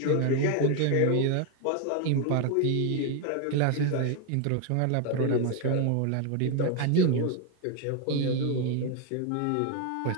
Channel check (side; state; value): both; different; correlation 0.01